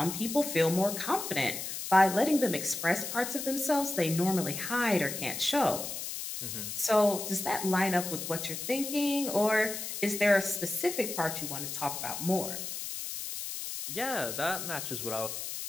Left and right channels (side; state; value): left; noise; hiss, 6 dB below the sound